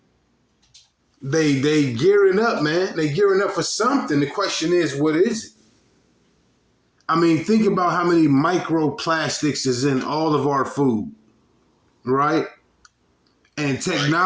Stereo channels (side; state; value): both; identical; correlation 1.00